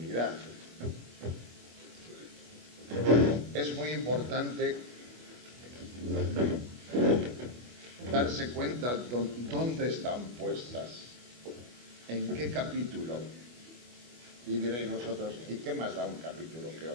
es muy importante darse cuenta dónde están puestas, en qué capítulo. Y diréis vosotros, ¿y qué más da un capítulo que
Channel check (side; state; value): left; late; 25 ms